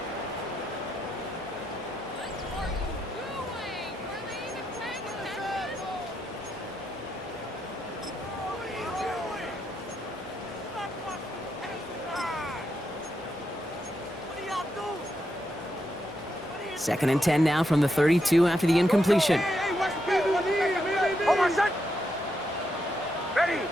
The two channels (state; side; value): normal; both; correlation 0.82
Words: Second and 10 now from the 32 after the incompletion.